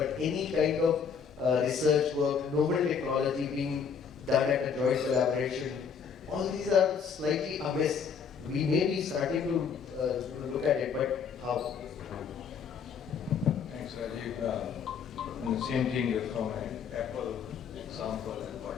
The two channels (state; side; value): quieter; right; 6.5 dB